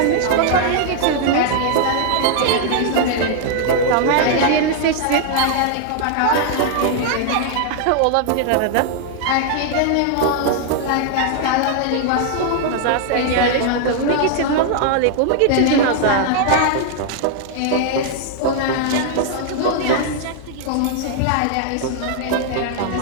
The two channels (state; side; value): different; both; correlation 0.00